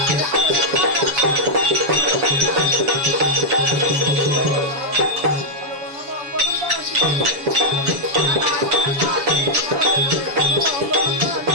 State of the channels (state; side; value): late; left; 7.1 ms